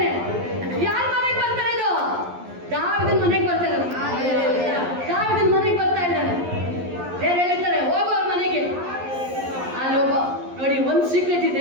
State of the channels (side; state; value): left; late; 11 ms